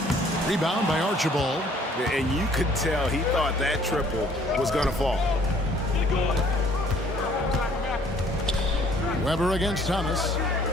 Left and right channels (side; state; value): both; normal; correlation 0.59